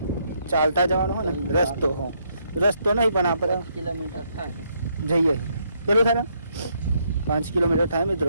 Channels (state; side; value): inverted; both; correlation -0.74